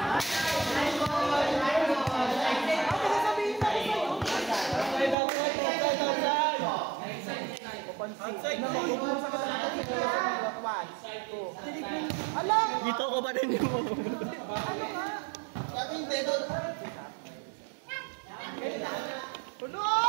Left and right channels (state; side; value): drops out; left; at 5.2 s